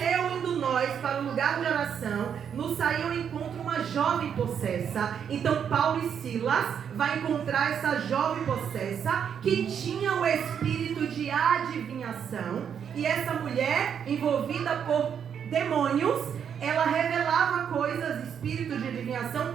indo nós para o lugar de oração, nos saiu ao encontro uma jovem possessa. Então Paulo e Silas vai encontrar essa jovem possessa que tinha o espírito de adivinhação, e essa mulher envolvida por demônios, ela revelava coisas, espírito de adivinhação,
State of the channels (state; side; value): quieter; left; 7.9 dB